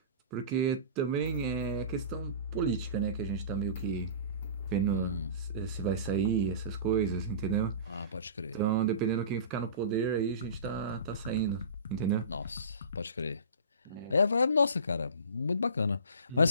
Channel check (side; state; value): both; inverted; correlation -0.37